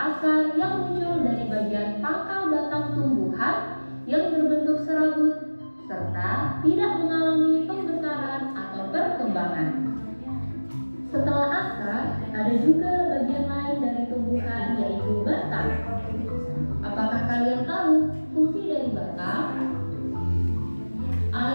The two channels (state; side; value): inverted; both; correlation -1.00